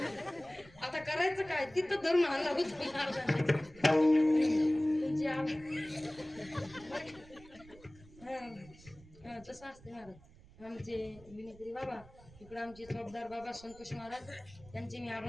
आता करायचं काय तिथं धरून आणला होत तसं असते महाराज आमचे विनेत्री बाबा इकडे आमचे चौकदार बाबा संतोष महाराज त्यांचे मी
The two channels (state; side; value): noise; right; rumble, 22 dB below the sound